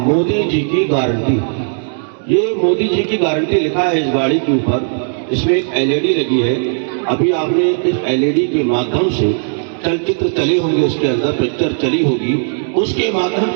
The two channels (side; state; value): left; silent; digital silence